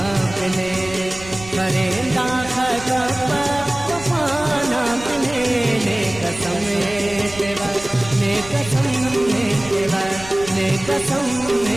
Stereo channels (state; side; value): noise; right; rumble, 16 dB below the sound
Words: पिने करेंदा खगपा वफाना पिने ने कसम तेरा ने कसम तेरा ने कसम